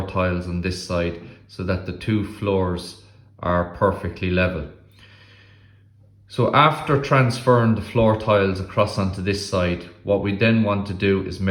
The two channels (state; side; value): identical; both; correlation 1.00